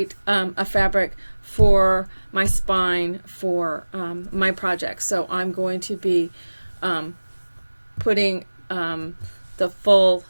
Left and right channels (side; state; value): both; inverted; correlation -1.00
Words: a fabric for my spine for my project. So I'm going to be putting the full